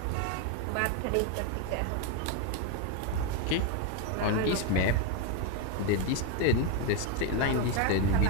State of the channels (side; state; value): both; different; correlation 0.02